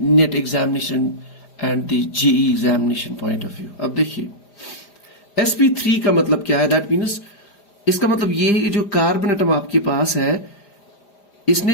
NET examination and the JEE examination point of view। अब देखिए sp3 का मतलब क्या है? दैट मीन्स इसका मतलब ये है कि जो कार्बन एटम आपके पास है इसने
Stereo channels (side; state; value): right; late; 4.9 ms